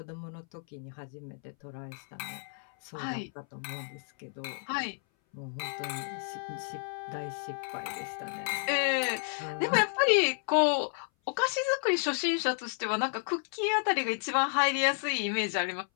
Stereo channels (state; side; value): silent; right; 57 dB below the other